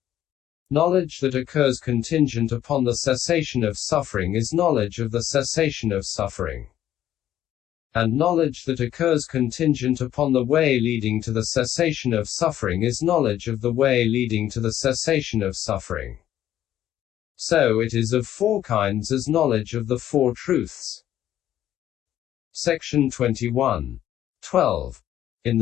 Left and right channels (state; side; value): quieter; right; 11.9 dB